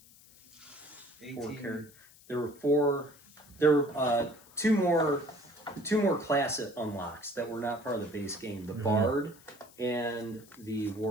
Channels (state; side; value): noise; left; hiss, 24 dB below the sound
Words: 4 characters. There were 4. There were 2 more class unlocks that were not part of the base game. The bard and the